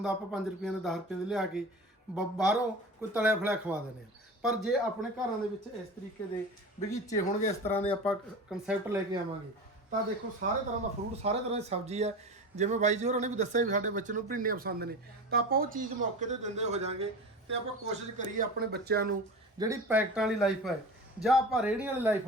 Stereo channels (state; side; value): normal; both; correlation 0.31